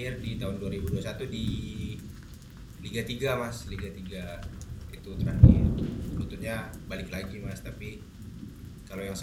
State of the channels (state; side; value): identical; both; correlation 1.00